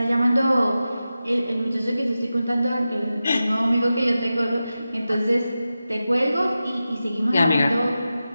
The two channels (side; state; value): both; inverted; correlation -0.93